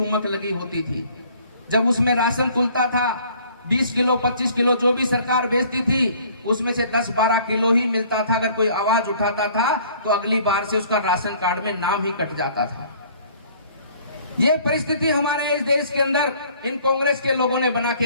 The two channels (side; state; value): both; inverted; correlation -0.55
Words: लगी होती थी। जब उसमें राशन तुलता था, 20 किलो 25 किलो जो भी सरकार बेचती थी, उसमें से 10-12 किलो ही मिलता था। अगर कोई आवाज उठाता था तो अगली बार से उसका राशन कार्ड में नाम ही कट जाता था। ये परिस्थिति हमारे इस देश के अंदर इन कांग्रेस के लोगों ने बना